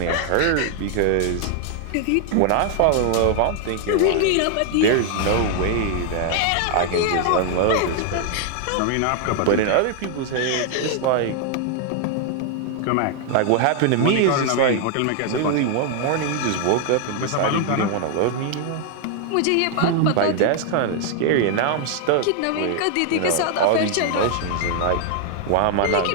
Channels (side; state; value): both; different; correlation 0.00